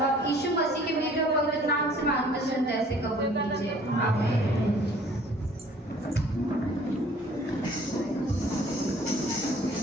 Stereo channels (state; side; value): normal; both; correlation 0.54